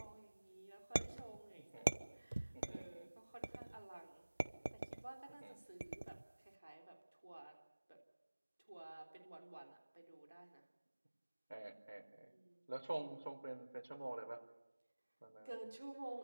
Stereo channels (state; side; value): inverted; both; correlation -1.00